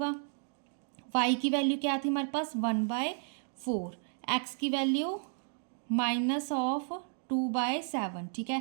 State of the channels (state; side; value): silent; left; 56 dB below the other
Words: y की वैल्यू क्या थी हमारे पास 1/4, x की वैल्यू -2/7, ठीक